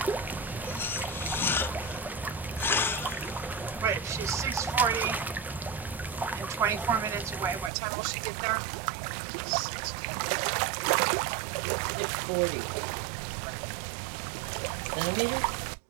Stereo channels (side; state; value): left; drops out; at 7.7 s